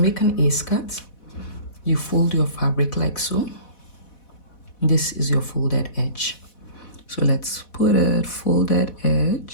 an A-skirt, you fold your fabric like so. This is your folded edge. So let's put a folded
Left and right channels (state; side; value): late; right; 4.1 ms